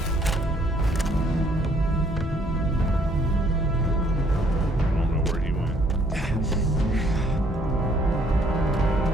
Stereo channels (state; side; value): normal; both; correlation 0.64